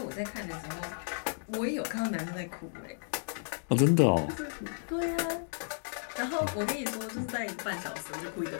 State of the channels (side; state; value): right; silent; digital silence